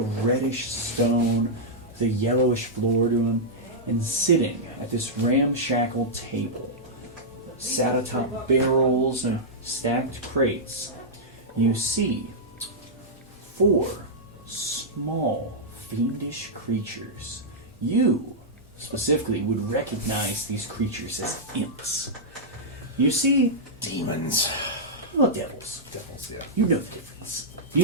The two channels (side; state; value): both; normal; correlation -0.09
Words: stone with a yellowish floor to him, and sitting at this ramshackle table, sat atop barrels and stacked crates, you see 4 small, fiendish creatures. You, specifically, would recognize these creatures as imps. You see Demons. well, devils. Devils, yeah. You know the difference.